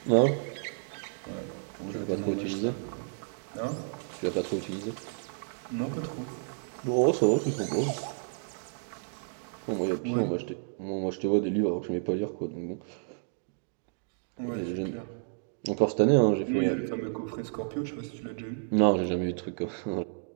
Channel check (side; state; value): left; silent; digital silence